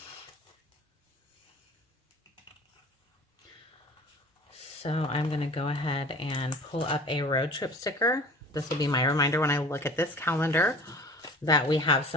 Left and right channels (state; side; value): normal; both; correlation 0.42